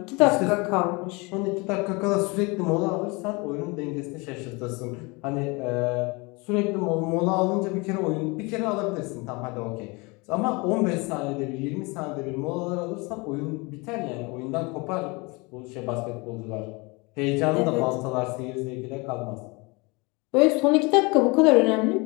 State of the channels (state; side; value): quieter; right; 27.0 dB